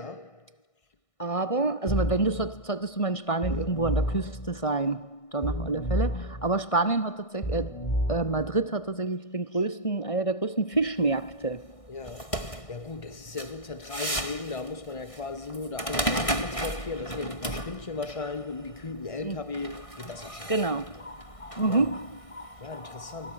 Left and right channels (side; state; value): right; late; 1.6 ms